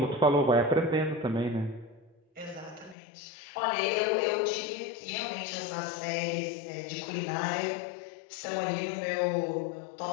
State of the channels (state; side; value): drops out; right; at 3.0 s